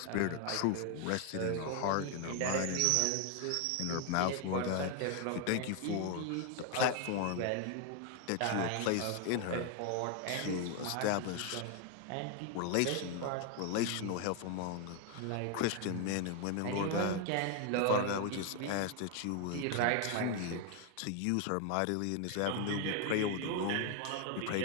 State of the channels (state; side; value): different; both; correlation 0.01